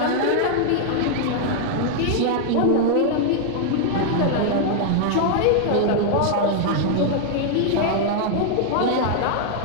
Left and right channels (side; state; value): both; different; correlation -0.01